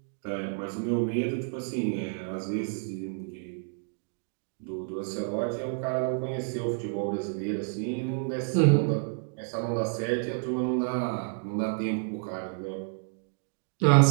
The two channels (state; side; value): silent; left; digital silence